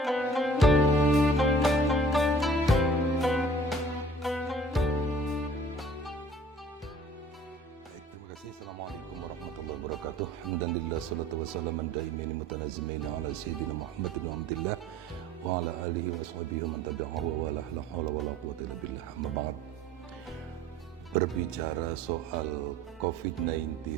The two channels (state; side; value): normal; both; correlation 0.50